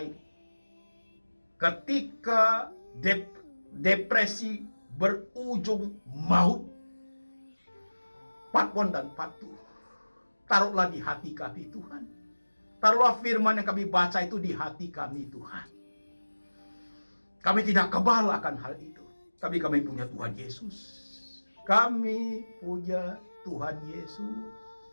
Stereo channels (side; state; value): both; inverted; correlation -1.00